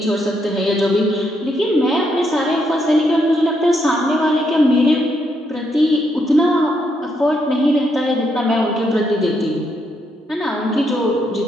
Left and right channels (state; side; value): normal; both; correlation 0.77